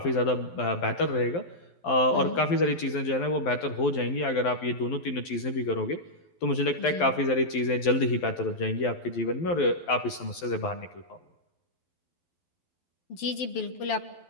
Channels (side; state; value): right; late; 12 ms